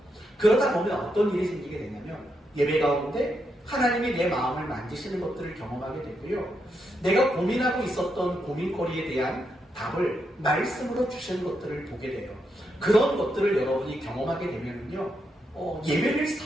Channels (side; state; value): both; normal; correlation 0.82